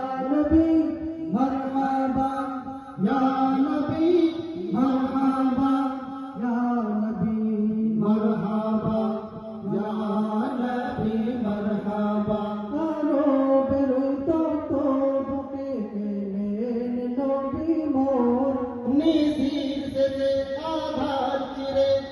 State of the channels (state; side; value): identical; both; correlation 1.00